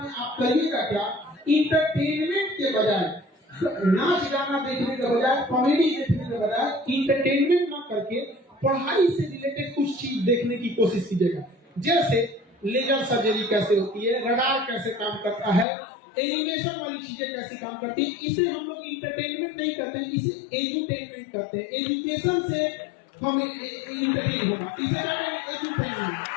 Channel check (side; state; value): right; drops out; at 15.7 s